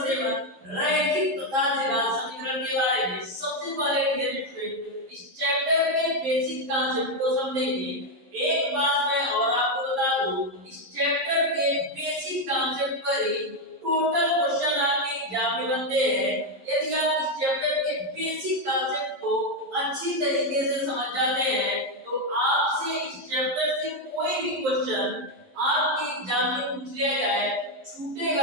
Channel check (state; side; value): late; left; 11 ms